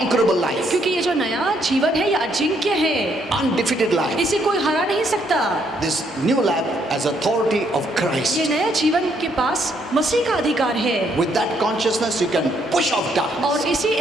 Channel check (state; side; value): normal; both; correlation 0.71